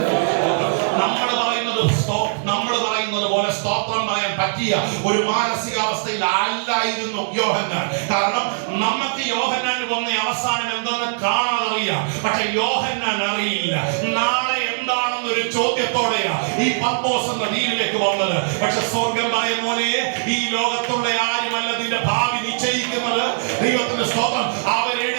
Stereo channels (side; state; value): left; silent; digital silence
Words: നമ്മൾ പറയുന്നത് പോലെ സ്തോത്രം പറയാൻ പറ്റിയ ഒരു മാനസികാവസ്ഥയിൽ അല്ലായിരുന്നു യോഹന്നാൻ. കാരണം നമുക്ക് യോഹന്നാന് വന്ന അവസാനം എന്തെന്ന് കാണാതറിയാം. പക്ഷെ യോഹന്നാൻ അറിയില്ല നാളെ എന്താണെന്നൊരു ചോദ്യത്തോടെയാ ഈ പത്മോസ് എന്ന ദ്വീപിലേക്ക് വന്നത്. പക്ഷെ സ്വർഗം പറയും, മോനെ, ഈ ലോകത്തുള്ള ആരുമല്ല നിന്റെ ഭാവി നിശ്ചയിക്കുന്നത്. ദൈവത്തിന്റെ സ്തോത്രം,